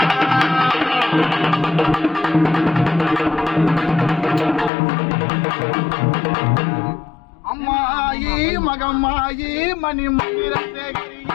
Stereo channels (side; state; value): right; drops out; at 4.7 s